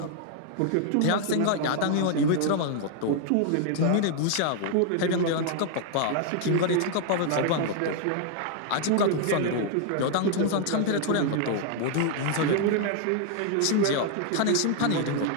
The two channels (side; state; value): both; different; correlation 0.00